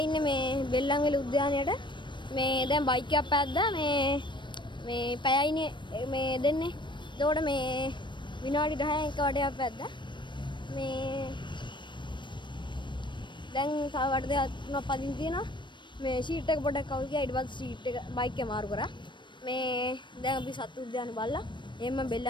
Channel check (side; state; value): right; late; 0.22 ms